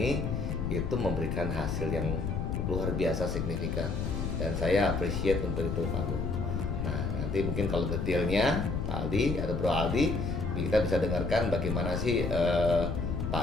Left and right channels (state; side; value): noise; left; rumble, 1 dB below the sound